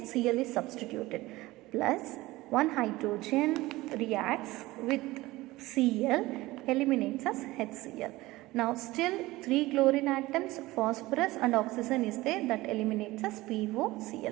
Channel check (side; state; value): left; quieter; 19.1 dB